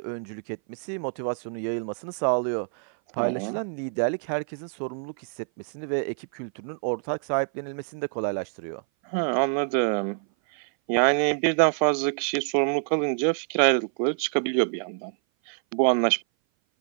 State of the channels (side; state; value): left; silent; 58 dB below the other